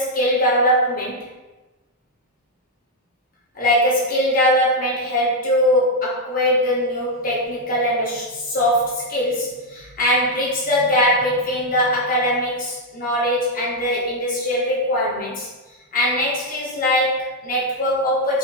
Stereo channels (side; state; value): both; normal; correlation 0.00